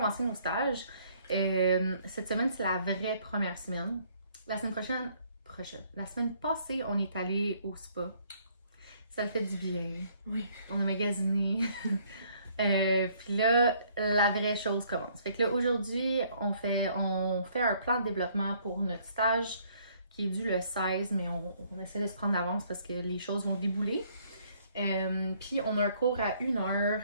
nos stages. Cette semaine, c'est la vraie première semaine. La semaine la semaine passée, on est allé au spa. Ça le fait du bien. Oui. On a magasiné. Puis là, la vraie chose commence. Fait que là, aujourd'hui, on fait un plan de développement pour notre stage qui est dû le 16, mais on essaie de se prendre d'avance parce que les choses vont débouler. Puis on a un cours à 1 heure,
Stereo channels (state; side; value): inverted; both; correlation -0.64